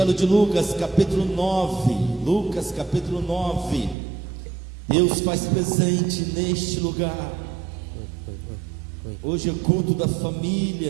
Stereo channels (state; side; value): drops out; left; at 4.0 s